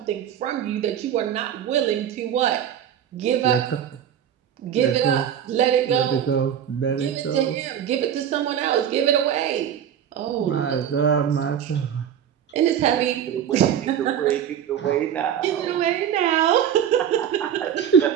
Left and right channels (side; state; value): left; quieter; 9.3 dB